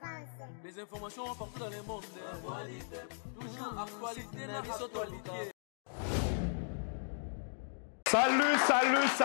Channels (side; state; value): right; silent; digital silence